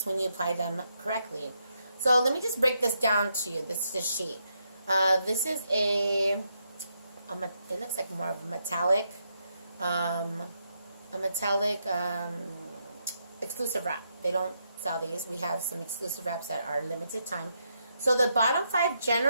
when you apply them correctly. So let me just break this down to you. This is a sheet. This is it looks like more of a metallic exclusive wrap. They don't sell these. We have some exclusive wraps that are limited time. So the bottom 5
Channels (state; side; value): inverted; both; correlation -0.80